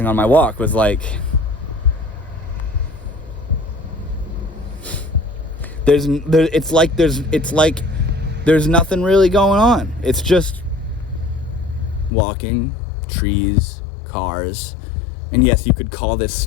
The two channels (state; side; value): drops out; right; at 12.1 s